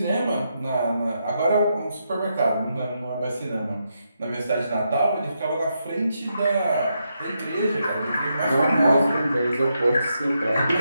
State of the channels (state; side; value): inverted; both; correlation -0.82